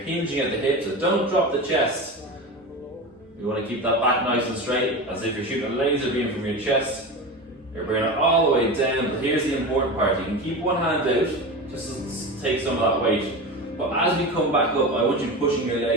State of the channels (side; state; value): both; normal; correlation 0.26